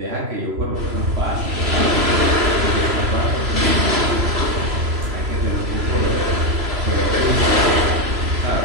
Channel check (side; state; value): left; late; 3.0 ms